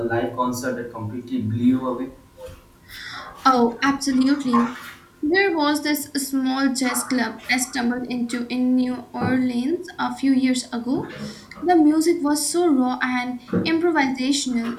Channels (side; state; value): both; identical; correlation 1.00